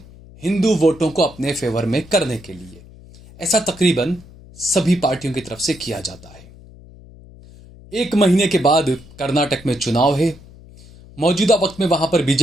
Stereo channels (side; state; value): left; noise; hum, 21 dB below the sound